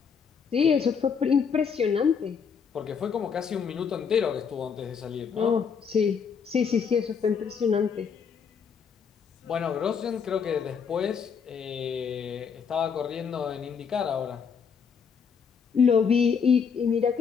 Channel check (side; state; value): right; quieter; 6.4 dB